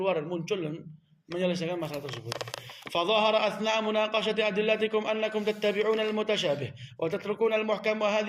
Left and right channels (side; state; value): both; identical; correlation 1.00